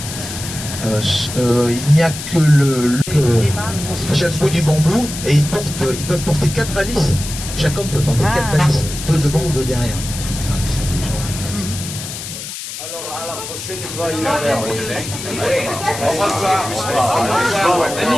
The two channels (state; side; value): noise; left; hiss, 9 dB below the sound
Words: Il n'y a que chaque bout du bambou et ils peuvent porter 4 valises. Chaque homme peut porter 4 valises, 2 devant ou 2 derrière. Alors, à la prochaine fois, il va faire. Au revoir.